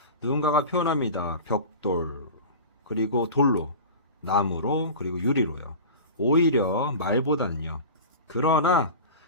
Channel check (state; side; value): inverted; both; correlation -0.33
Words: 누군가가 표현합니다. 벽돌, 그리고 돌로, 나무로, 그리고 유리로요. 오히려 말보다는요. 그러나